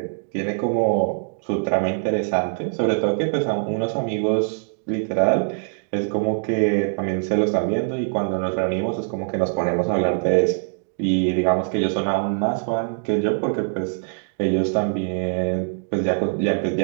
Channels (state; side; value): silent; left; digital silence